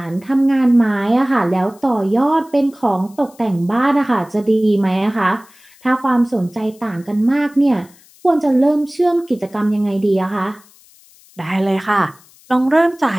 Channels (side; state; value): left; noise; hiss, 27 dB below the sound